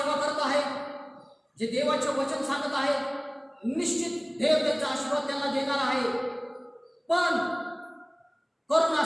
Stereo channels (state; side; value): identical; both; correlation 1.00